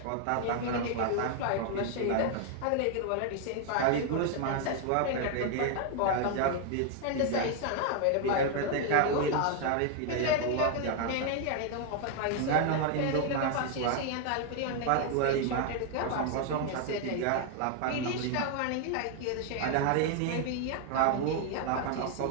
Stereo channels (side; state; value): both; different; correlation 0.00